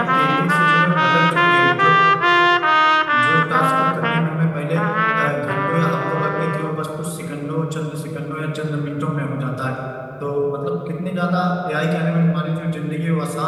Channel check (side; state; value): both; identical; correlation 1.00